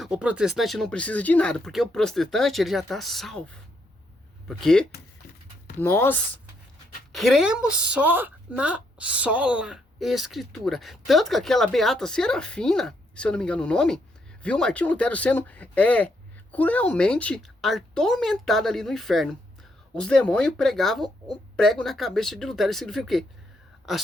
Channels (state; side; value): normal; both; correlation 0.76